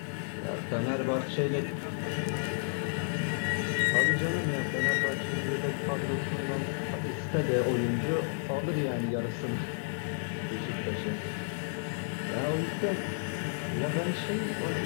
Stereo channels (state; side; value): silent; right; 57 dB below the other